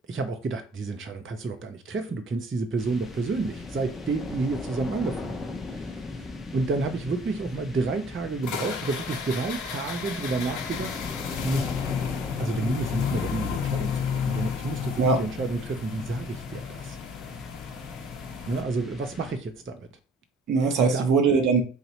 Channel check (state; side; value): normal; both; correlation 0.54